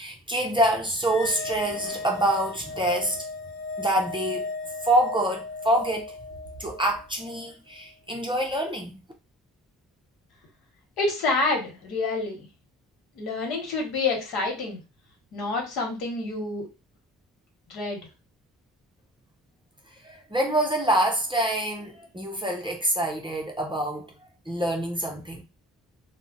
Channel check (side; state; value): both; normal; correlation 0.38